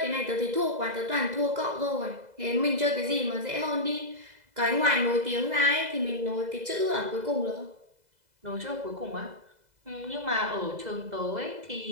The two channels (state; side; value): late; left; 2.0 ms